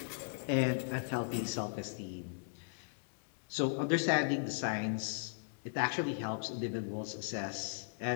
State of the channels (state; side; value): silent; right; digital silence